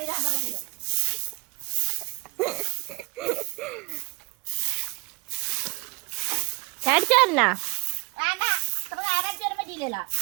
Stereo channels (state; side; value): quieter; left; 28.7 dB